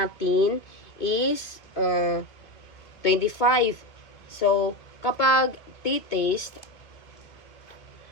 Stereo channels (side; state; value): right; late; 2.2 ms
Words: is 25. So, kapag t-test